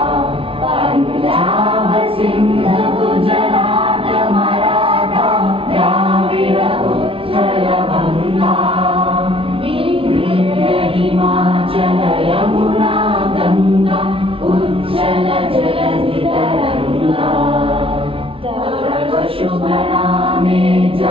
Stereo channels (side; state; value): left; late; 0.26 ms